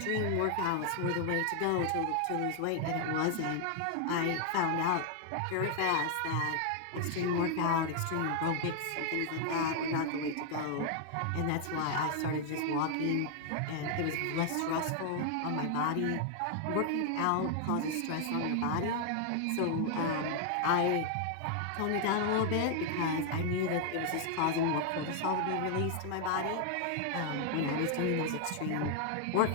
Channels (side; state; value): both; different; correlation 0.00